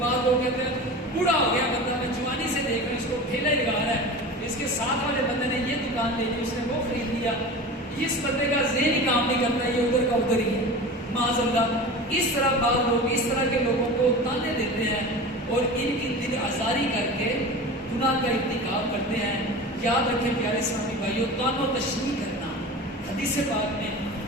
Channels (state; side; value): normal; both; correlation 0.33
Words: لوگ کہتے ہیں بوڑھا ہو گیا بندہ، میں جوانی سے دیکھ رہا ہوں اس کو ٹھیلا ہی لگا رہا ہے، اس کے ساتھ والے بندے نے یہ دکان لے لی، اس نے وہ خرید لیا، اس بندے کا ذہن ہی کام نہیں کرتا، یہ ادھر کا ادھر ہی ہے معاذ اللہ۔ اس طرح بعض لوگ اس طرح کے لوگوں کو تانے دیتے ہیں اور ان کی دل آزاری کر کے گناہ کا ارتکاب کرتے ہیں۔ یاد رکھیں پیارے اسلامی بھائیوں، توان و تشریح کرنا حدیث پاک میں